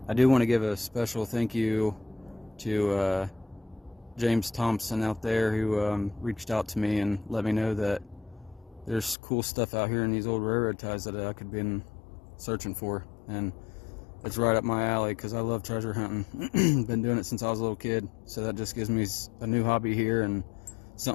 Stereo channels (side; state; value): right; drops out; at 9.2 s